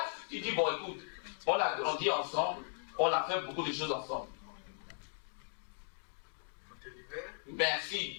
tu dis, bon, écoute, on a grandi ensemble, on a fait beaucoup de choses ensemble.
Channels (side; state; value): right; silent; digital silence